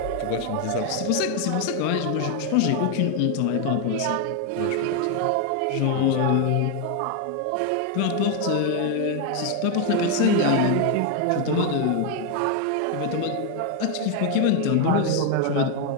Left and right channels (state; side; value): different; both; correlation 0.01